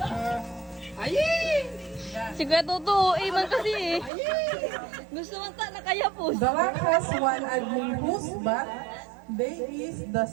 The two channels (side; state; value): left; drops out; at 4.1 s